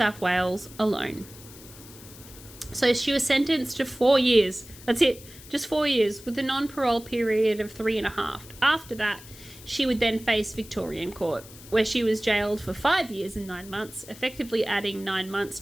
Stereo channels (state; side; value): noise; left; hiss, 19 dB below the sound